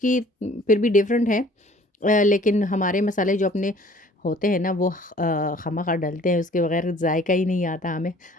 फिर भी डिफ़रेंट है। लेकिन हमारे मसाले जो अपने होते हैं ना, वो खामख़ा डलते हैं, उसके बगैर जायका ही नहीं आता हमें।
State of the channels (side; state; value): both; normal; correlation 0.53